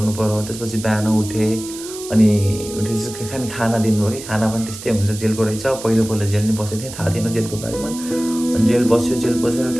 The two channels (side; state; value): right; noise; hiss, 12 dB below the sound